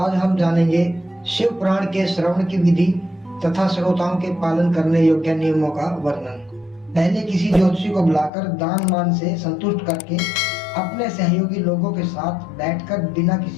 हम जानेंगे शिव पुराण के श्रवण की विधि तथा श्रोताओं के पालन करने योग्य नियमों का वर्णन। पहले किसी ज्योतिषी को बुलाकर दान मान से संतुष्ट करके अपने सहयोगी लोगों के साथ बैठकर बिना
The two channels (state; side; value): drops out; right; at 8.3 s